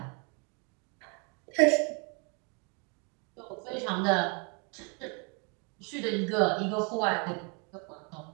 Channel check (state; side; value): quieter; left; 35.2 dB